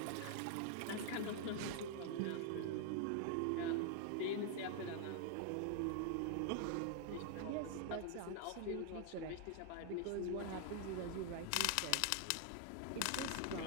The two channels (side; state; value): both; different; correlation 0.00